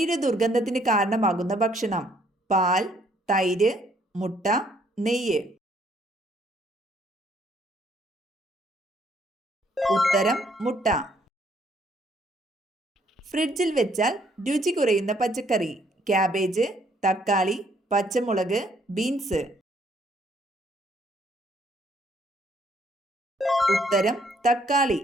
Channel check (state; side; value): normal; both; correlation 0.66